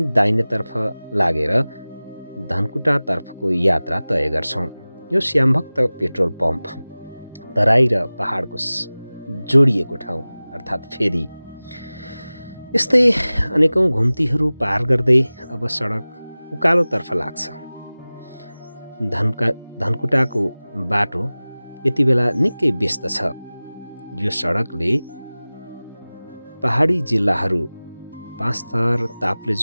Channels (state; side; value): inverted; both; correlation -0.98